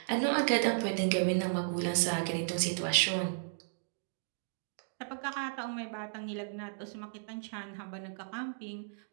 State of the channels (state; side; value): silent; left; digital silence